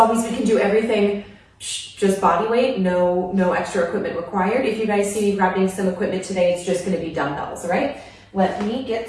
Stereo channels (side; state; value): both; identical; correlation 1.00